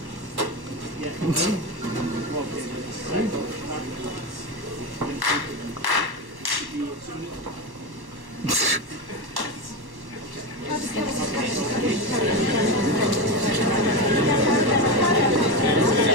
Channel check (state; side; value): late; left; 1.1 ms